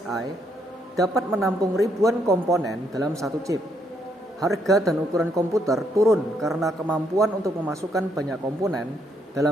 dapat menampung ribuan komponen dalam satu chip. Harga dan ukuran komputer turun karena kemampuan untuk memasukkan banyak komponen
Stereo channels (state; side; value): normal; both; correlation 0.73